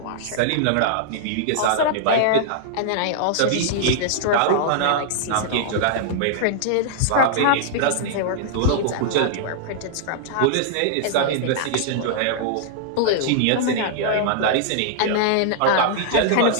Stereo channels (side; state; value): both; different; correlation -0.01